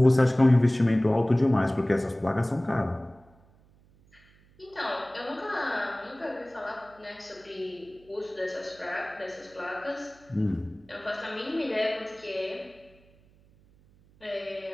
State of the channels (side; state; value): right; noise; hum, 29 dB below the sound